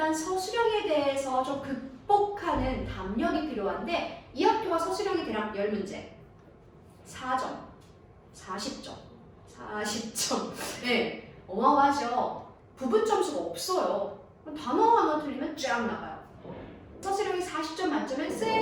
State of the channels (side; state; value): both; identical; correlation 1.00